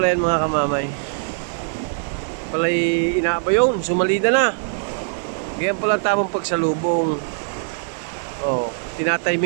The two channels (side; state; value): left; silent; digital silence